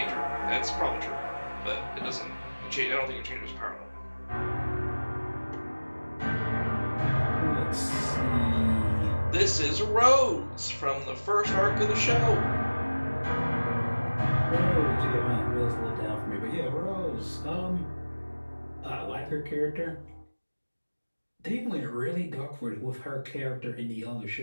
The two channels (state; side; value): inverted; both; correlation -1.00